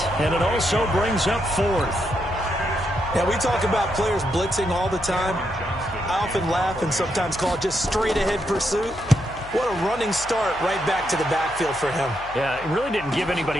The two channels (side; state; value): left; noise; hum, 17 dB below the sound